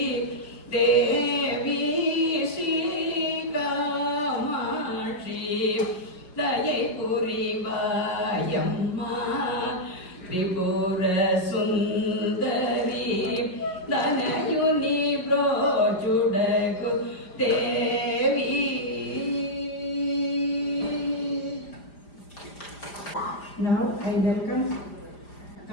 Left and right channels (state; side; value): late; right; 5.0 ms